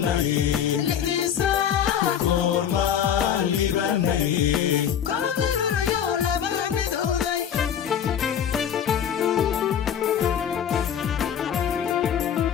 lixdiisa goormaan libanay kooda luliyo laba midowday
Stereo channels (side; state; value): right; quieter; 8.8 dB